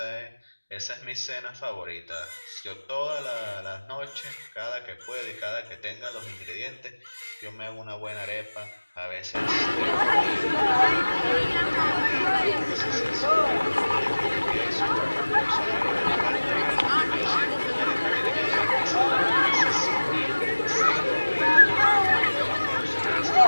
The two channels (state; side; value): inverted; both; correlation -1.00